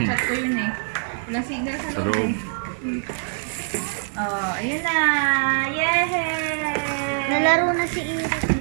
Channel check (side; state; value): left; silent; digital silence